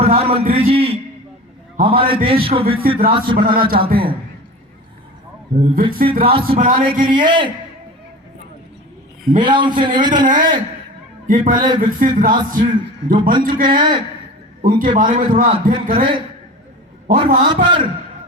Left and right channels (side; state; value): both; normal; correlation 0.34